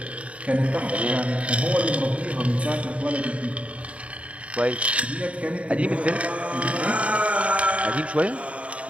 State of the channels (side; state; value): left; late; 0.064 ms